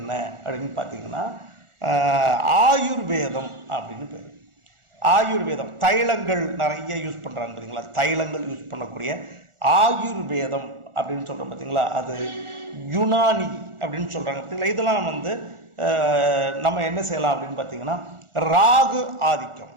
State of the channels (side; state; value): left; late; 1.4 ms